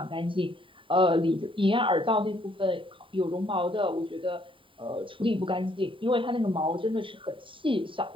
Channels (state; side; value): late; left; 0.25 ms